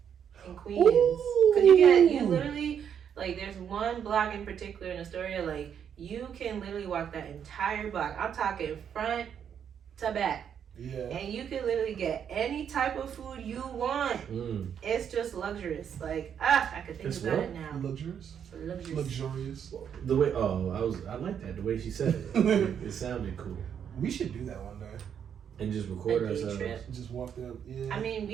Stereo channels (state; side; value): quieter; left; 8.3 dB